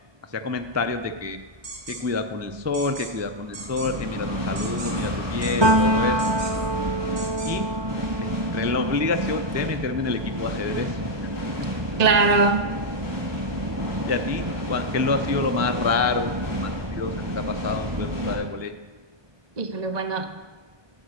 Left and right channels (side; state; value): left; late; 1.2 ms